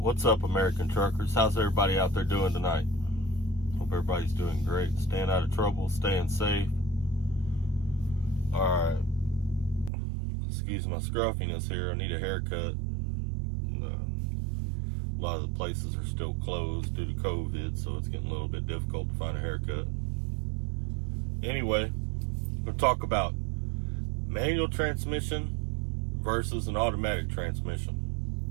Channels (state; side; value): drops out; left; at 9.9 s